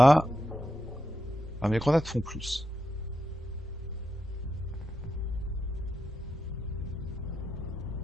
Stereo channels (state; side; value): normal; both; correlation 0.86